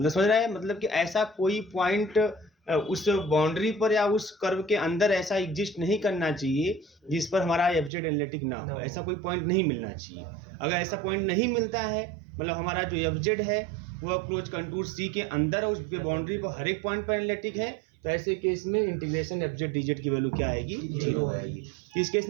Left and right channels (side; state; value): left; drops out; at 7.9 s